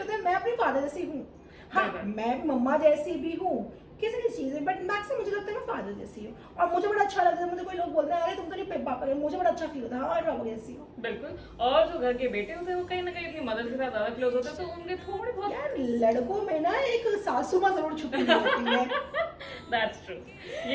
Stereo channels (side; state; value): both; identical; correlation 1.00